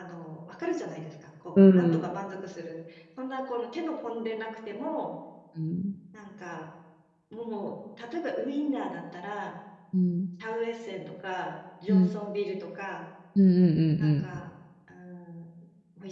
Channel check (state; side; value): identical; both; correlation 1.00